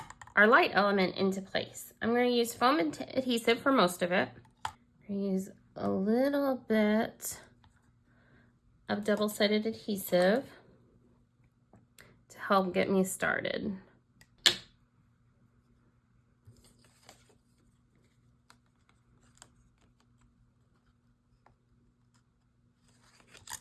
our light element into place. I'm going to use foam adhesive for most of it. I'm going to use a little bit of double-sided adhesive to help get me started.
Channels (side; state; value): both; identical; correlation 1.00